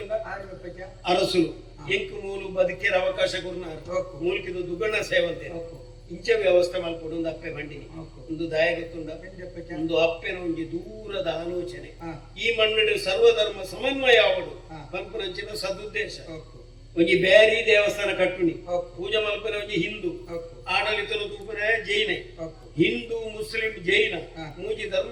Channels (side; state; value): both; identical; correlation 1.00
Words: ಅರಸುಲು ಎಂಕು ಮೂಲು ಬದುಕೇರ ಅವಕಾಶ ಕೊರ್ನಾರು ಮೂಲ್ಕಿದು ದುಗ್ಗಣ್ಣ ಸೇವಂತೆ ಇಂಚ ವ್ಯವಸ್ಥೆ ಮಲ್ಪಡು ಒಂದು ಅಪ್ಪೆ ಬಂಡಿನಿ ಒಂದು ದಾಯ ಗೊತ್ತುಂಡ ಒಂದು ಅಪ್ಪೆನ ಒಂಜಿ ದೂರದ ಆಲೋಚನೆ ಈ ಮಣ್ಣಿನ ಸರ್ವಧರ್ಮ ಸಮನ್ವಯ ಆವಡು ಪಂಪನಂಚಿನ ಸದುದ್ದೇಶ ಒಂಜಿ ಬ್ಯಾರಿ ದೇವಸ್ಥಾನ ಕಟ್ಟುನಿ ಪೂಜೆ ಮಲ್ಪನೆ ಒಂಜಿ ಹಿಂದೂ ಆಡಳಿತನ ತೂಪನೆ ಜೈನ ಹಿಂದೂ ಮುಸ್ಲಿಂ ಜೈನ ಮೂಜಿ